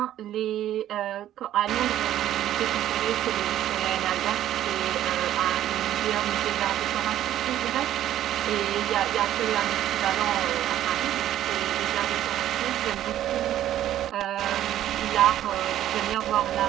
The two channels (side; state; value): left; quieter; 12.2 dB